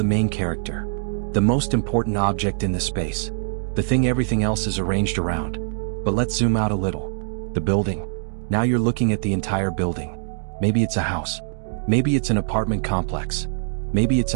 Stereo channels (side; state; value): left; silent; digital silence